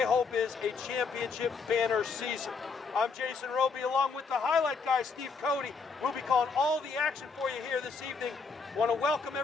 hope is a championship banner season? I'm Jason Roby, along with the highlight guy, Steve Cody. We'll be calling all the action for you here this evening. Want to welcome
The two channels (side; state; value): right; quieter; 4.8 dB